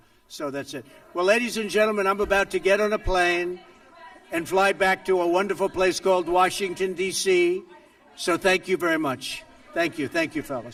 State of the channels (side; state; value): both; identical; correlation 1.00